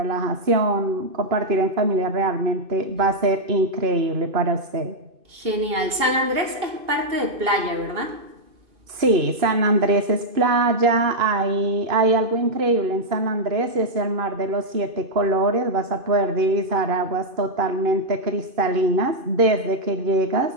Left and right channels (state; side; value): late; left; 2.5 ms